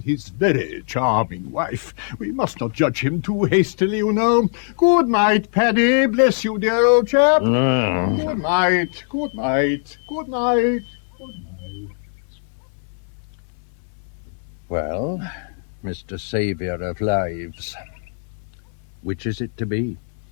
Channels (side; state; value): right; silent; 64 dB below the other